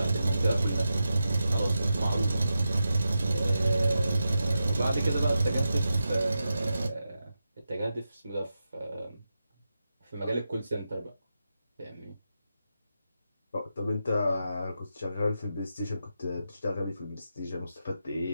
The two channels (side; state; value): both; inverted; correlation -0.89